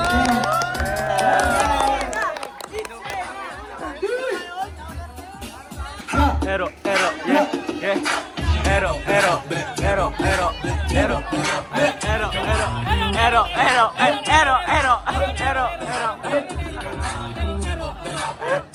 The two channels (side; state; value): both; identical; correlation 1.00